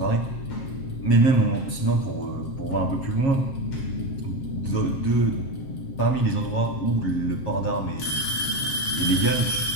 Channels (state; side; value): late; right; 7.3 ms